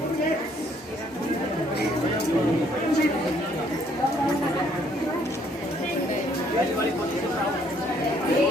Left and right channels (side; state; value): both; normal; correlation 0.65